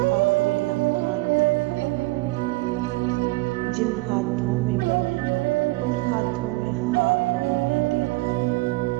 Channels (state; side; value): quieter; left; 21.8 dB